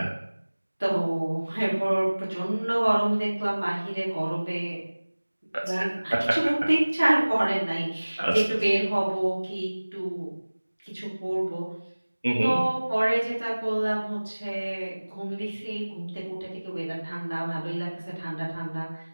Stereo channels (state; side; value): inverted; both; correlation -1.00